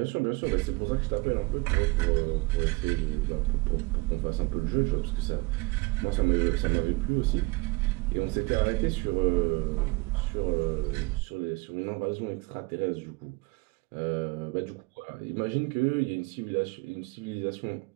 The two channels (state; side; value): quieter; left; 25.0 dB